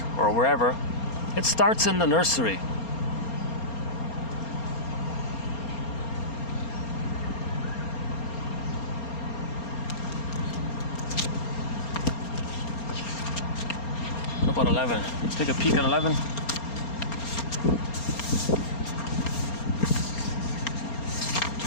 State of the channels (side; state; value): right; late; 4.3 ms